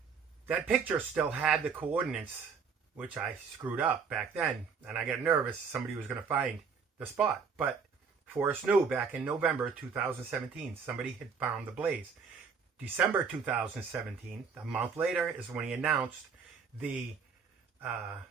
picture still had the coordinates, which I screwed up back then, and I got nervous somebody was going to find the spot. But Forrest knew back in November 2017, somebody had found the blaze. December 2017, a month later, is when he announced the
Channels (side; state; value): left; quieter; 5.8 dB